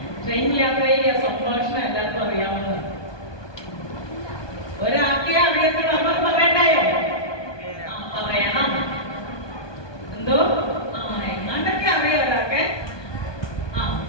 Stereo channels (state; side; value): late; right; 1.2 ms